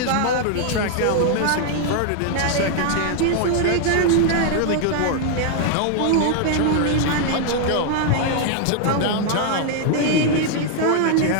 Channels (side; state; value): both; different; correlation 0.00